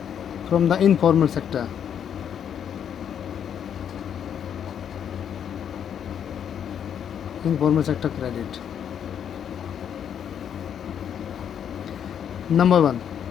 from the informal sector. informal sector credit. Number 1,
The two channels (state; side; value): quieter; right; 8.7 dB